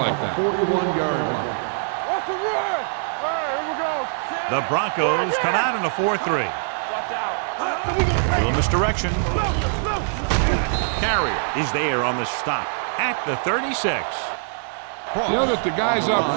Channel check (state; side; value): silent; left; digital silence